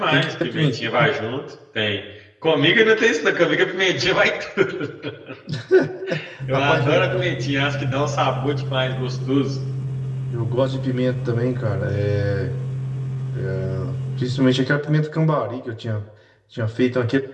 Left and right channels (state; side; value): identical; both; correlation 1.00